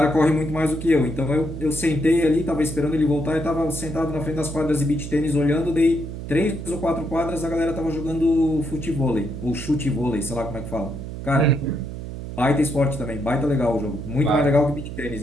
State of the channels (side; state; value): right; noise; hum, 8 dB below the sound